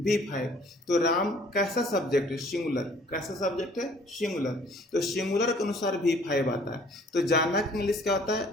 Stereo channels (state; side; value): normal; both; correlation 0.56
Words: V5। तो राम कैसा सब्जेक्ट है, सिंगुलर। कैसा सब्जेक्ट है, सिंगुलर। तो सिंगुलर के अनुसार V5 आता है। तो जाना का इंग्लिश क्या होता है,